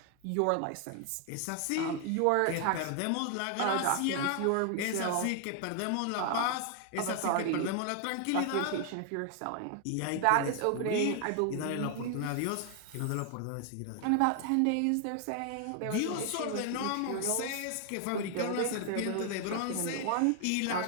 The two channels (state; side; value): different; both; correlation 0.00